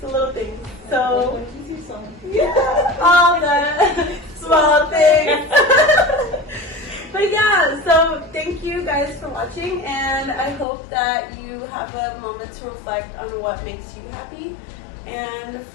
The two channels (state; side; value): drops out; right; at 10.7 s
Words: a little thing. Like So when you see someone. yeah, all the small things. But yeah, so thank you guys for watching, and I hope that you have a moment to reflect on what makes you happy. And